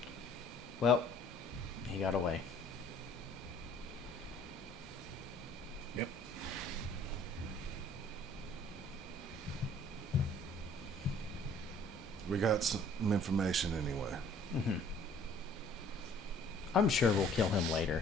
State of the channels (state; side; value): normal; both; correlation 0.56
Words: Well, he got away. Yep. We got some information anyway. Mm-hmm. I'm sure we'll kill him